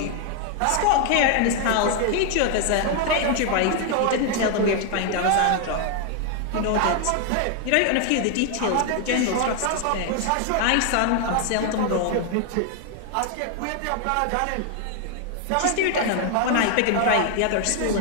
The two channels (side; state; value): both; different; correlation 0.00